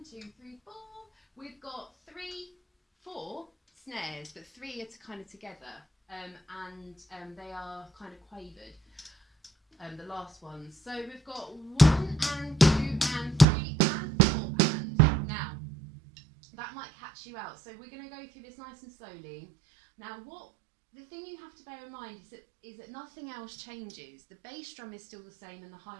2, 3, 4, we've got 4 snares, but 3 are kind of together, and they are kind of quavered, the last ones. So we've got 1 and 2 and 3 and 4 and. Now, that might catch you out, so we're going to go through this nice and slowly. Now, the thing you have to bear in mind is that nothing else changes. The bass drum is still the same and the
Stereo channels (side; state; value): left; drops out; at 13.5 s